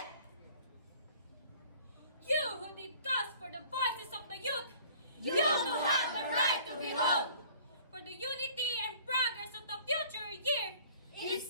You who did cause for the voices of the youth, You who have the right to behold! for the unity and progress of the future year, It's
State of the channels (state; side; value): inverted; both; correlation -0.51